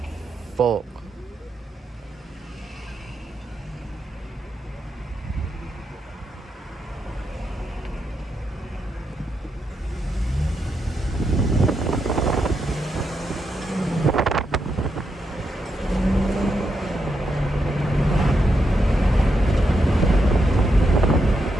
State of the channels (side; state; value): both; normal; correlation 0.83